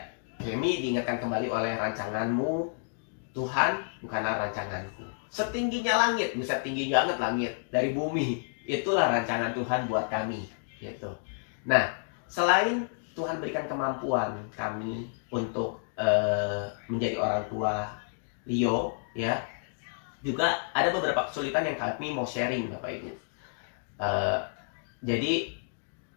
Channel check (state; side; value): silent; right; digital silence